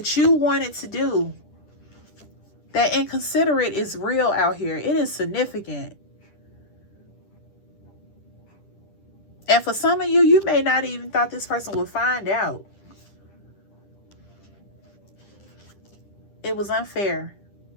you wanted to do. That inconsiderate is real out here. It is significant. And for some of you, you may not even thought this person would find out. It was unfair.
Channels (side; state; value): right; late; 10 ms